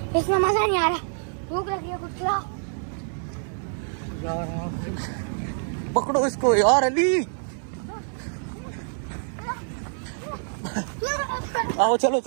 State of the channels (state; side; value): silent; left; digital silence